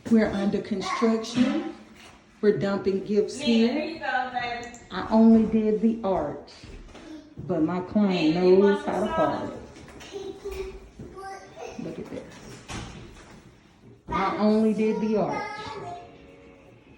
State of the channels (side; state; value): both; identical; correlation 1.00